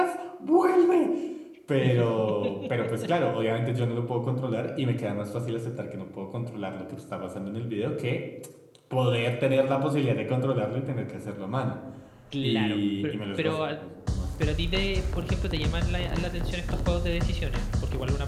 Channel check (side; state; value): both; identical; correlation 1.00